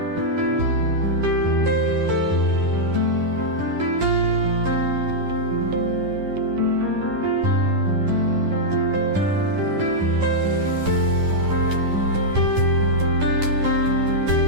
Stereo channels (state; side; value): late; left; 10 ms